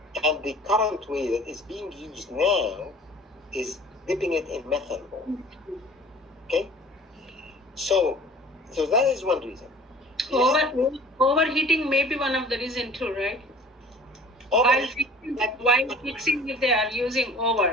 And the current way that is being used now is dipping it in methanol. Okay? So that is one reason. Overheating may be one of the reason too, right? While fixing if they are using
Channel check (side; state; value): both; normal; correlation 0.46